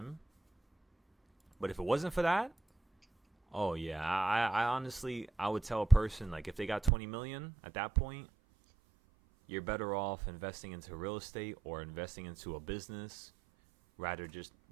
But if it wasn't for that, oh yeah, I honestly, I would tell a person, like, if they got 20 million at that point, you're better off investing into real estate or investing into a business rather just,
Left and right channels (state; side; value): drops out; left; at 6.9 s